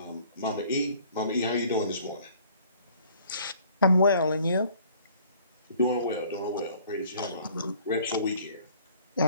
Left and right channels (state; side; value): inverted; both; correlation -0.55